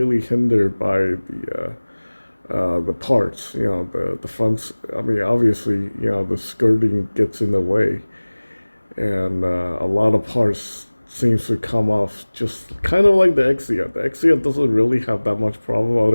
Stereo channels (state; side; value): inverted; both; correlation -1.00